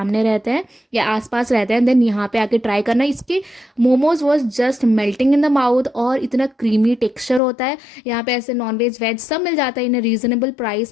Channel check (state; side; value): drops out; right; at 7.4 s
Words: रहते हैं या आसपास रहते हैं, देन यहाँ पे आके ट्राई करना। इसके momos was just melting in the mouth और इतना क्रीमी टेक्सचर होता है। यहाँ पे ऐसे नॉनवेज वेज सब मिल जाता है in a reasonable